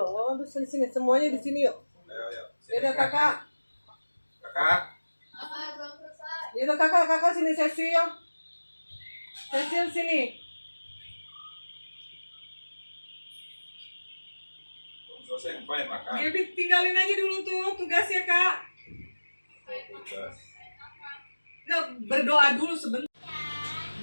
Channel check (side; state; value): both; inverted; correlation -1.00